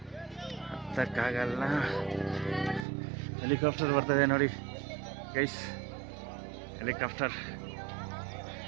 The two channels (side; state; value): left; drops out; at 2.9 s